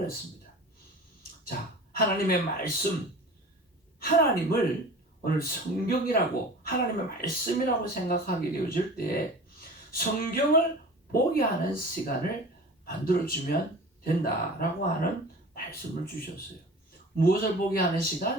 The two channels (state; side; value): normal; both; correlation 0.39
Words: 자, 하나님의 말씀, 하나님을 오늘 성경이라고 하나님의 말씀이라고 생각하게 되어질 때 성경을 보게 하는 시간을 만들어주면 된다라고 하는 말씀을 주셨어요. 무엇을 보게 하는